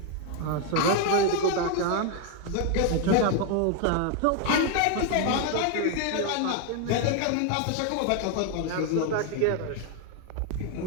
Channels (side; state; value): both; different; correlation 0.01